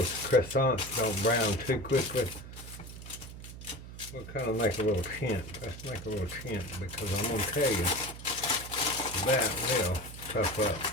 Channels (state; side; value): noise; right; hum, 13 dB below the sound